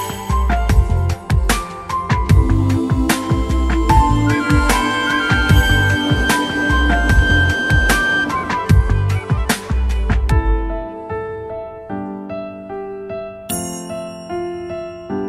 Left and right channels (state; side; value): identical; both; correlation 1.00